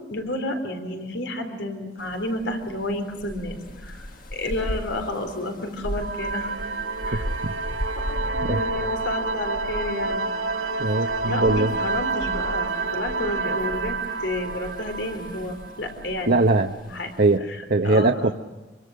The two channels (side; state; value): both; normal; correlation 0.08